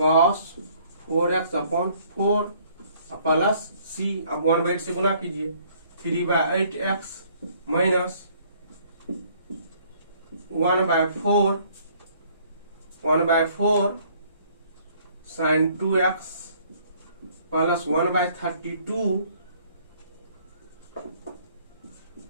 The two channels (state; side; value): inverted; both; correlation -0.61